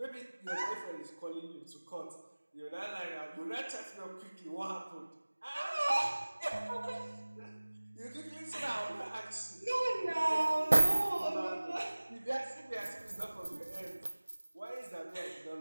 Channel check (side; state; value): both; inverted; correlation -1.00